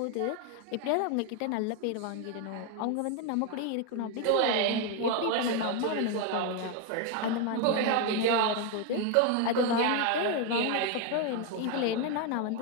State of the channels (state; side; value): different; both; correlation 0.01